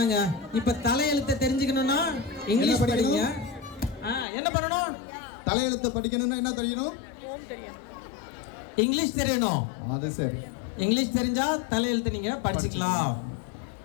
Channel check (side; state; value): right; drops out; at 4.2 s